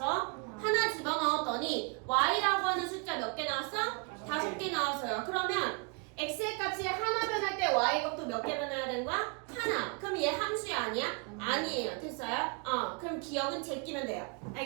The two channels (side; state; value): left; quieter; 32.7 dB